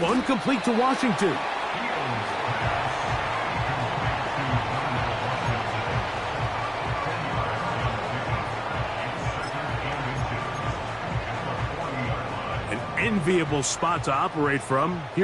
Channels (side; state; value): both; identical; correlation 1.00